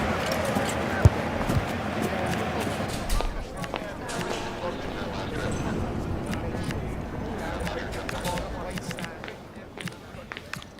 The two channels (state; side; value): identical; both; correlation 1.00